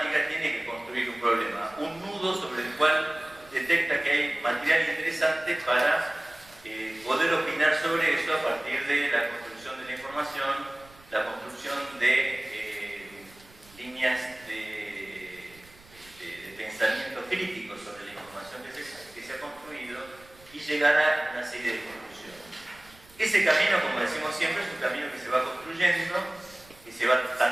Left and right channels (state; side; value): noise; right; rumble, 25 dB below the sound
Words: tiene que construir un problema, un nudo sobre el cual detecta que hay material interesante para poder opinar sobre eso a partir de la construcción de la información, la construcción de líneas de pensamiento crítico sobre la información que se ha construido y llegar a una serie de conclusiones. Ese camino, como decimos siempre, es un camino que se va construyendo, que se va